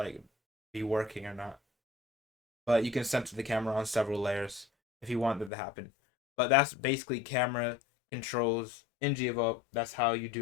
be working or not. But you can center the camera on several layers if you want that to happen. But that's basically camera controls in Gdevelop. That's how you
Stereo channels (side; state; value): right; drops out; at 5.5 s